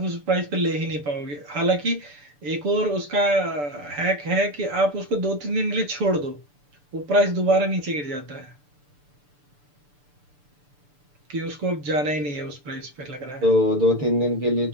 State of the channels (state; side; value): late; left; 6.8 ms